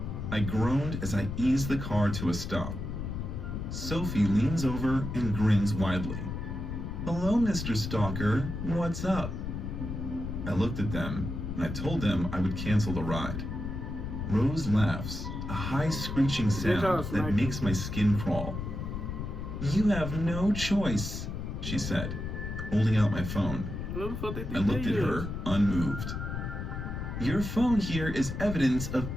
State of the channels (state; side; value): noise; left; rumble, 5 dB below the sound